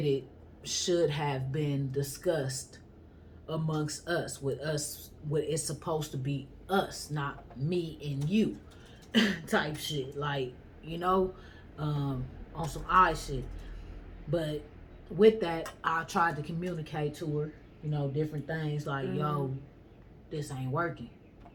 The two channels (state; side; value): identical; both; correlation 1.00